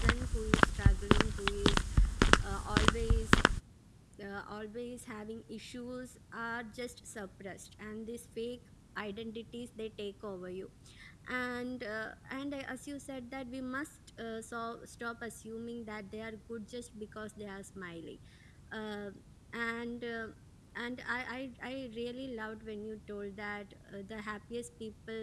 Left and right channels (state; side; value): identical; both; correlation 1.00